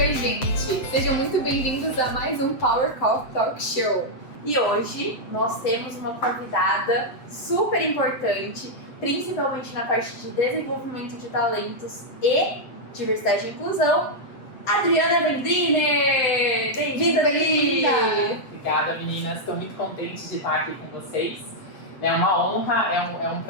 gente! Sejam muito bem-vindos a mais um Power Coffee Talk Show. E hoje nós temos uma convidada super importante, principalmente na parte de desenvolvimento de talentos e diversidade e inclusão, Adriana Vendriner! Bem-vinda, Adri! Obrigada, meninas. Estou muito contente de estar aqui com vocês. É uma honra, é um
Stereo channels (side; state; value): right; late; 7.9 ms